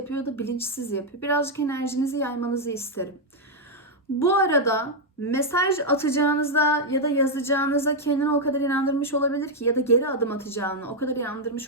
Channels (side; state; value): both; normal; correlation -0.01